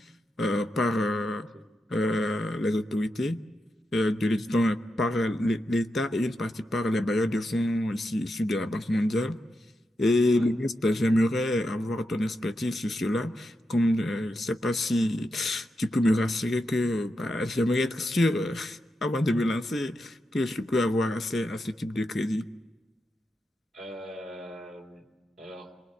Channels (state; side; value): normal; both; correlation 0.86